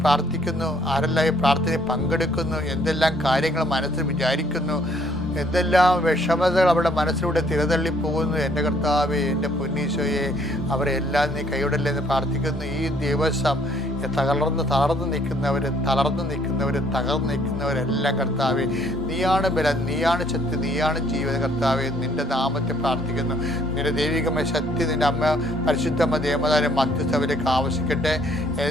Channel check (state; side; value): normal; both; correlation 0.64